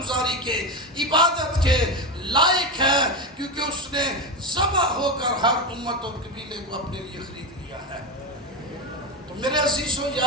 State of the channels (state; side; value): normal; both; correlation 0.16